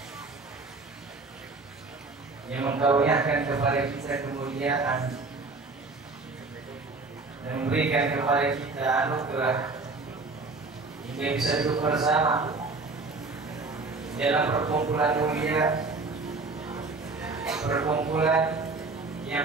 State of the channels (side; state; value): left; quieter; 3.7 dB